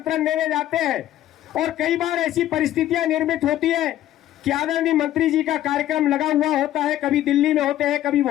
देने जाते हैं, और कई बार ऐसी परिस्थितियां निर्मित होती है कि आदरणीय मंत्री जी का कार्यक्रम लगा हुआ होता है, कभी दिल्ली में होते हैं, कभी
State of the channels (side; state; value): right; quieter; 12.9 dB